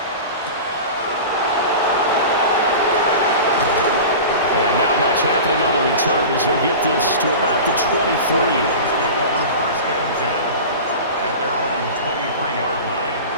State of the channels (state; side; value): inverted; both; correlation -0.32